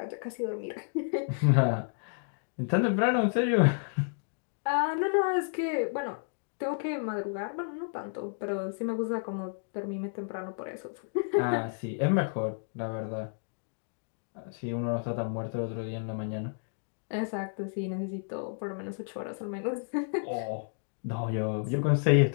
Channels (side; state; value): right; silent; digital silence